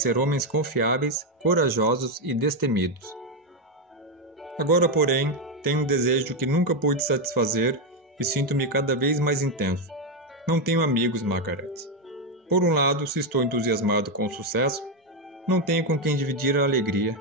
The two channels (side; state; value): both; normal; correlation 0.06